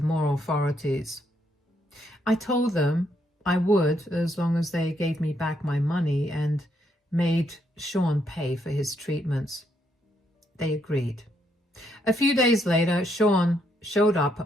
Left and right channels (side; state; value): both; normal; correlation 0.75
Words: more authorities. I told them I would, as long as they gave me back my money and made Sean pay for his treatments. They agreed. A few days later, Sean showed up